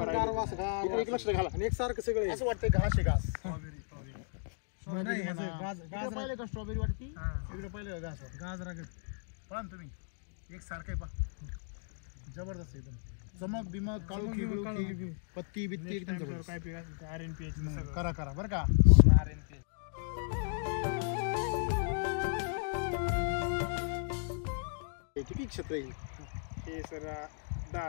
इकडे एक लक्ष घाला आणि एकसारखं सगळं असं वाटतंय घास आहे घास नाही, इकडे गाजर पाहिलं का स्ट्रॉबेरी वाटती इकडे पाहिलं घास गाजरा पहा ना तुम्ही एक सारखं आहे पहा जबरदस्त एकदम चमक बिमक काळू खिळू पत्ती बित्ती एकदम जबरदस्त. काय पीक RNPH करा बरं का किती क्षेत्र आहे हे सर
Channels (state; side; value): silent; right; digital silence